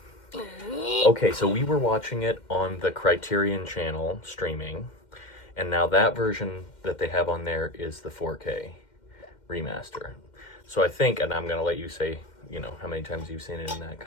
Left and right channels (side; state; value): right; late; 2.1 ms